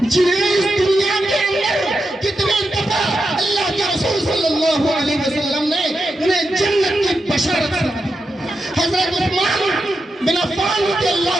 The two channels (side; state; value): both; normal; correlation 0.87